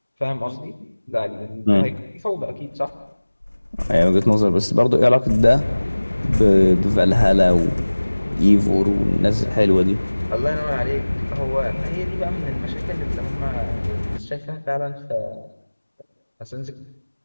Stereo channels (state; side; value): inverted; both; correlation -1.00